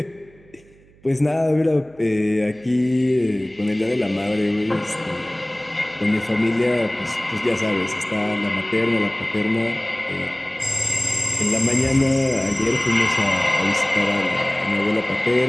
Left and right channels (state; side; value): noise; right; hum, 28 dB below the sound